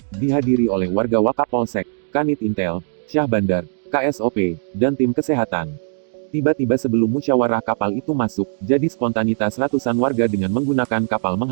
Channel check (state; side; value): silent; left; digital silence